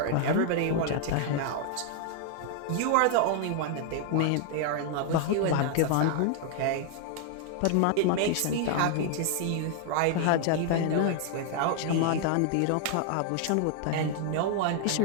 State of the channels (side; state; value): both; different; correlation 0.00